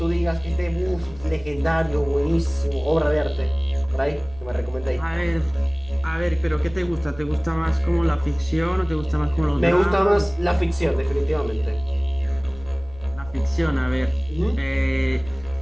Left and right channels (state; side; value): noise; left; rumble, 19 dB below the sound